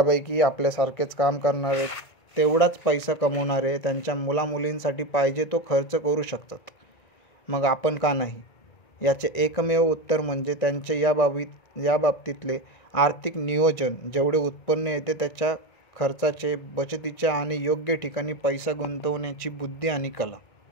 आपल्यासारखेच काम करणारे, तेवढाच पैसा कमवणारे त्यांच्या मुलामुलींसाठी पाहिजे तो खर्च करू शकतात. मग आपण का नाही? याचे एकमेव उत्तर म्हणजे त्यांचे या बाबतीतले आर्थिक नियोजन, जेवढे उत्पन्न येते त्याच्या खर्चाचे, बचतीच्या आणि योग्य ठिकाणी पैसा गुंतवण्याची बुद्धी आणि कला.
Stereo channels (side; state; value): right; late; 1.9 ms